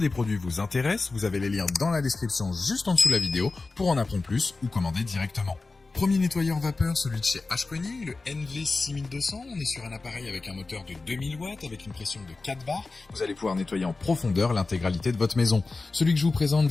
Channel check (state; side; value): quieter; right; 3.7 dB